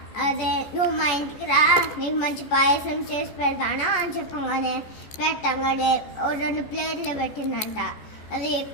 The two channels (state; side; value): late; right; 14 ms